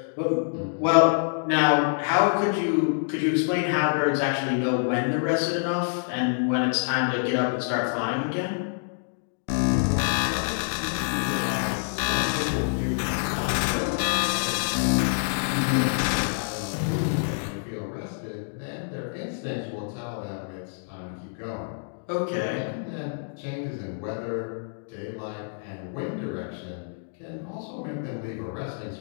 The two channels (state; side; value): silent; right; digital silence